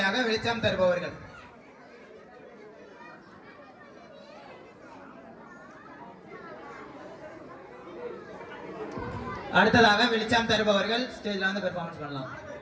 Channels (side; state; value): both; identical; correlation 1.00